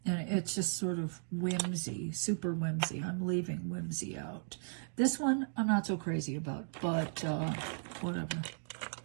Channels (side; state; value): left; silent; digital silence